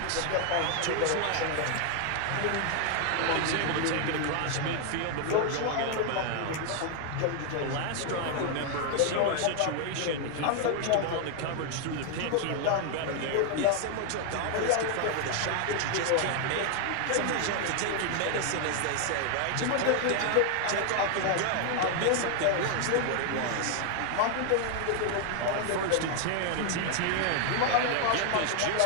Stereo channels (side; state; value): both; different; correlation 0.00